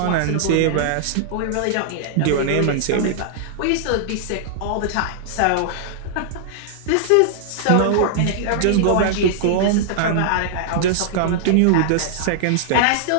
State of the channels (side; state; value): both; different; correlation -0.01